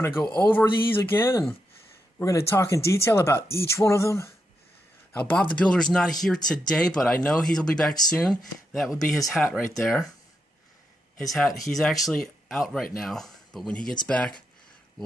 to go over these again, and we're going to talk in detail about each one of them. Now, Bob the Builder's not here today, but I know he'll be back soon. That would be his hat right there. His hat, he's actually out right now, but when he gets back,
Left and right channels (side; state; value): both; normal; correlation 0.84